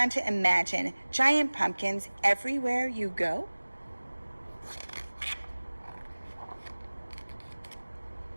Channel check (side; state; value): both; inverted; correlation -1.00